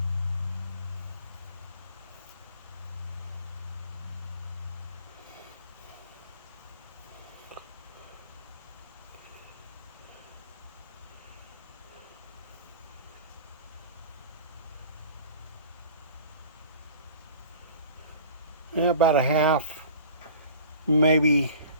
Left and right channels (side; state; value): both; inverted; correlation -0.43